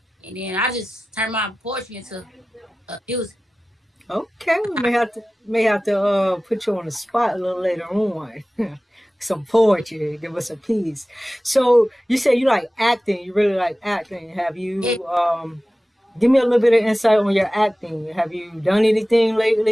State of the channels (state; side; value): normal; both; correlation 0.96